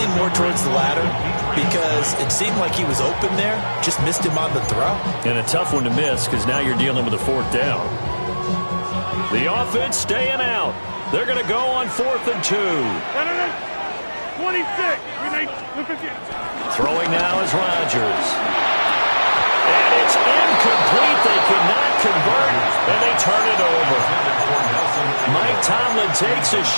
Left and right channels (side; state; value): both; inverted; correlation -1.00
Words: more towards the latter because it seemed like he was open there, just missed him on the throw. And a tough one to miss because now you're dealing with a 4th down. The offense staying out. They're going to go on 4th and 2. 26. Throwing now is Rodgers. And it's incomplete. They cannot convert, and they turn it over. Mike Tomlin takes a